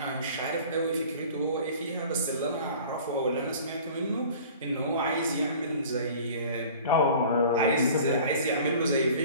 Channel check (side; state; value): both; inverted; correlation -0.45